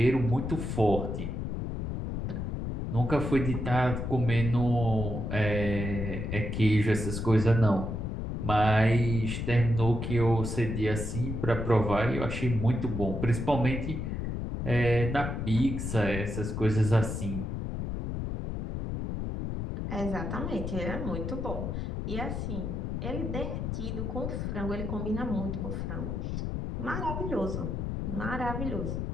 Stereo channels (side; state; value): left; noise; rumble, 3 dB below the sound